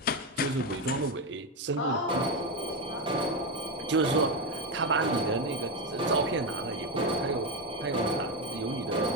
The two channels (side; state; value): both; normal; correlation 0.11